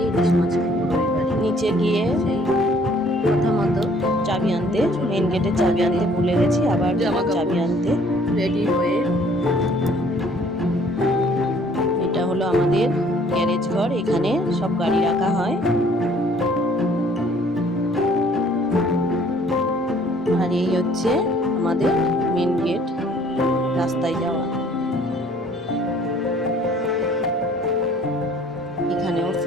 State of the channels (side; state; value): both; normal; correlation 0.58